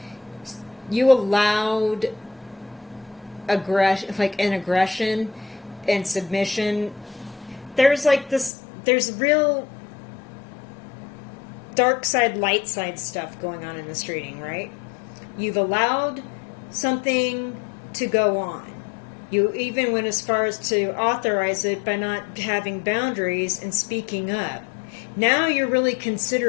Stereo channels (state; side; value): drops out; right; at 8.5 s